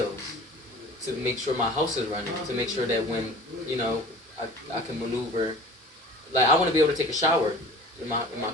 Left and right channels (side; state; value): both; normal; correlation 0.42